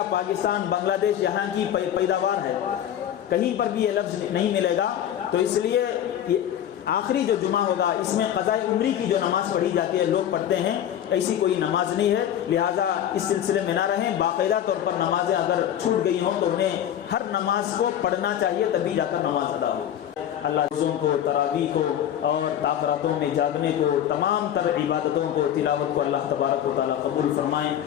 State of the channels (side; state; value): right; quieter; 10.5 dB